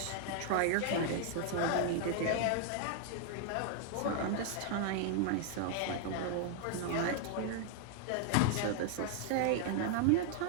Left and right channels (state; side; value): different; both; correlation 0.00